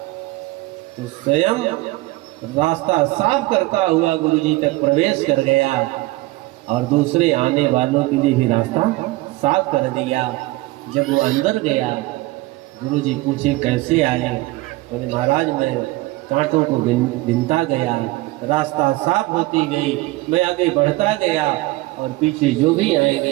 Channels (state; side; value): quieter; left; 19.7 dB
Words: तो स्वयं रास्ता साफ करता हुआ गुरुजी तक प्रवेश कर गया और दूसरे आने वालों के लिए भी रास्ता साफ कर दिया। जब वो अंदर गया, गुरुजी पूछे कैसे आए? बोले महाराज मैं कांटों को बिनता गया, रास्ता साफ होती गई, मैं आगे बढ़ता गया और पीछे जो भी